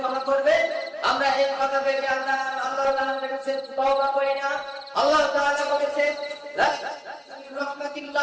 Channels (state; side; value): identical; both; correlation 1.00